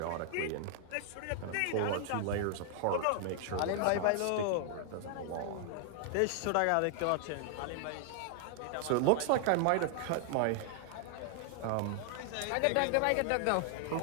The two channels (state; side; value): different; both; correlation 0.00